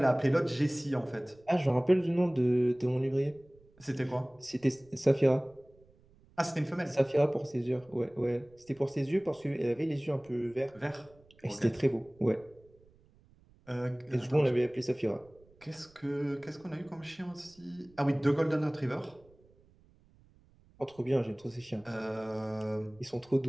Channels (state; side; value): noise; right; rumble, 29 dB below the sound